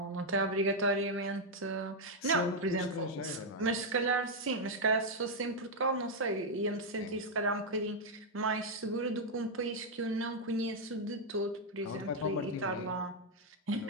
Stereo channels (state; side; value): normal; both; correlation 0.00